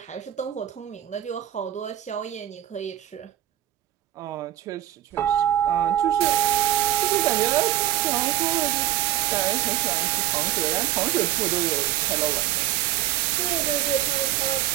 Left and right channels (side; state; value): left; quieter; 12.8 dB